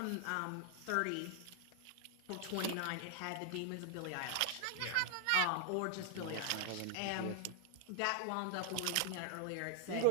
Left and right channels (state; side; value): different; both; correlation 0.00